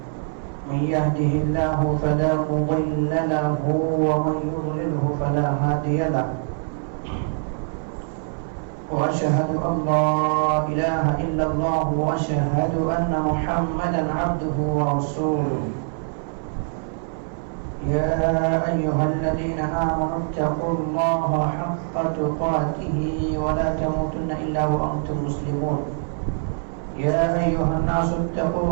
من يهده الله فلا مضل له ومن يضلله فلا هادي له وأشهد أن لا إله إلا الله وأشهد أن محمدا عبده ورسوله يا أيها الذين آمنوا اتقوا الله حق تقاته ولا تموتن إلا وأنتم مسلمون يا أيها الناس اتقوا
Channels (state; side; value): silent; left; 60 dB below the other